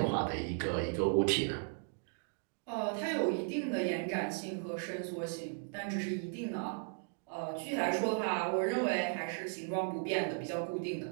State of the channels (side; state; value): left; silent; 54 dB below the other